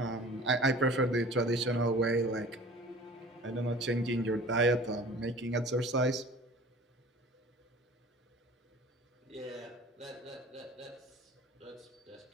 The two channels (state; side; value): normal; both; correlation 0.44